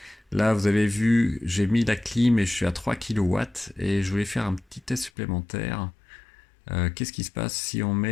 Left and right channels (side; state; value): right; drops out; at 5.1 s